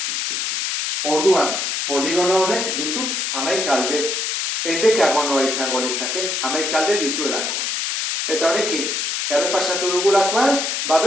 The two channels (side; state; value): left; noise; hiss, 1 dB below the sound